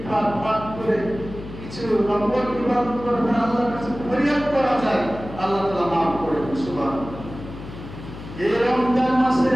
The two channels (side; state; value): left; noise; hum, 13 dB below the sound